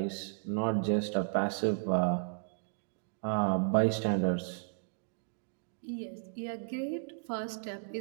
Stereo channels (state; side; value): silent; left; digital silence